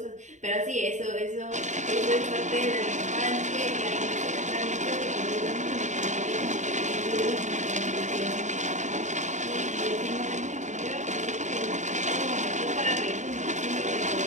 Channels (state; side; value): late; left; 0.35 ms